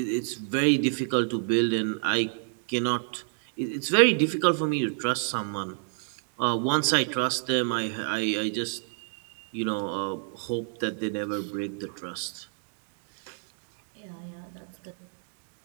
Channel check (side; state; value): left; silent; 59 dB below the other